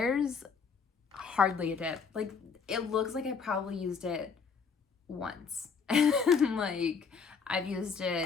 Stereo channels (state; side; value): quieter; right; 5.7 dB